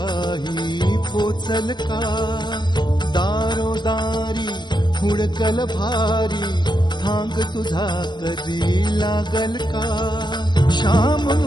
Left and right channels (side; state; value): right; late; 0.21 ms